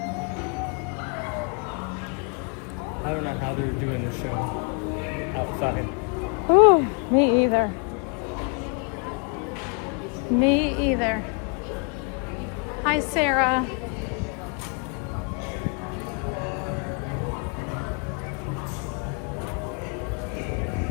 I don't know how they're doing the show outside. Ooh, me either. Me either. Hi, Sarah.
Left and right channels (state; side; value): quieter; right; 37.4 dB